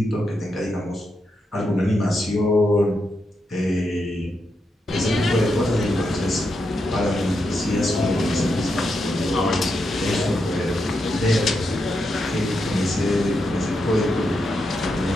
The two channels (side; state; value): both; normal; correlation 0.84